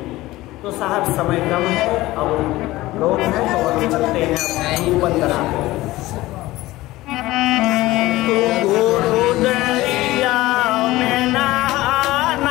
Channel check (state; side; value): quieter; right; 17.9 dB